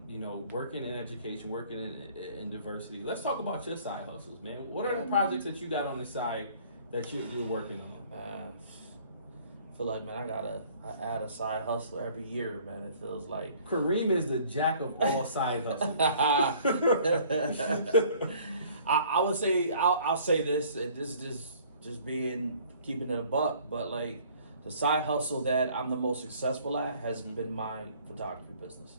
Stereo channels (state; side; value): inverted; both; correlation -0.55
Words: You know, working in education, working in diversity. Let's talk about your side hustles, man. What are the projects that you got on the side that you're working on? I feel like, man, I add a side hustle every year, man. It feels like. Kareem is the jack of all side hustles. I would say I'll say this, and this is just keeping it a buck, but like the side hustle that I'm the most successful at has been my photography business.